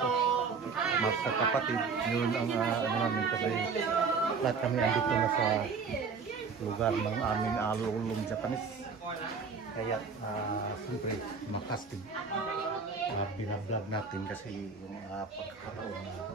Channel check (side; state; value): left; quieter; 5.2 dB